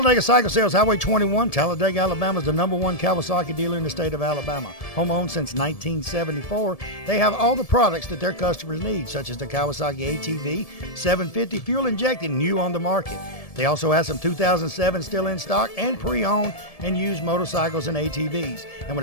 Cycle Sales, Highway 21, Talladega, Alabama is the #1 Kawasaki dealer in the state of Alabama. Home-owned since 1974, they have all the products that their customers need, such as the Kawasaki ATV 750 fuel-injected, new on the market. They also have some 2007 still in stock and pre-owned and used motorcycles and ATVs. And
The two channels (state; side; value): late; right; 1.7 ms